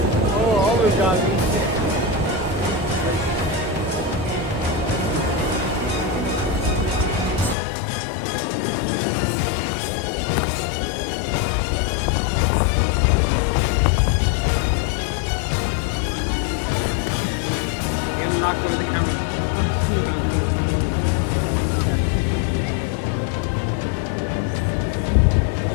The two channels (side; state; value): right; drops out; at 7.6 s